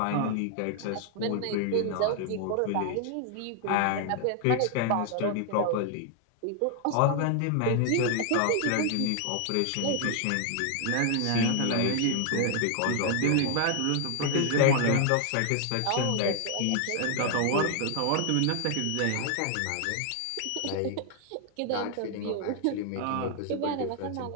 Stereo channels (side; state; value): both; different; correlation 0.00